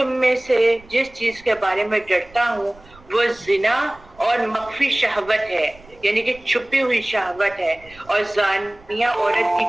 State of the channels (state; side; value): noise; right; rumble, 25 dB below the sound